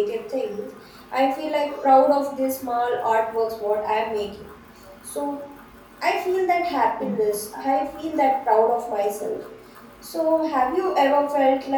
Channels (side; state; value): both; identical; correlation 1.00